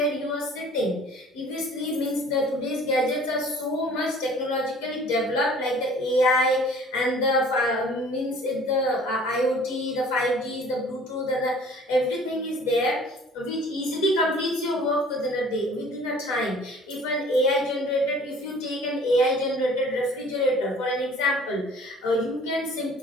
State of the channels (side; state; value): both; normal; correlation 0.50